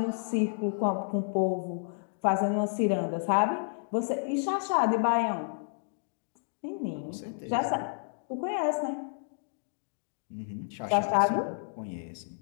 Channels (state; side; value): silent; right; digital silence